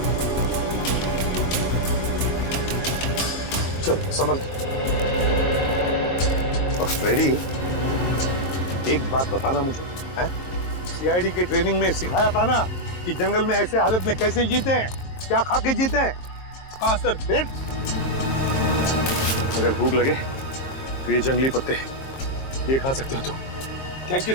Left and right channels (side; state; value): right; late; 22 ms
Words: चलो संभल के। और फ्रेडी, एक बात बताना मुझे, है? सीआईडी के ट्रेनिंग में सिखाया था ना कि जंगल में ऐसे हालत में कैसे जीते हैं, क्या खा के जीते हैं? हाँ सर। फिर अगर भूख लगे तो ये जंगली पत्ते ये खा सकते हो तुम। Thank you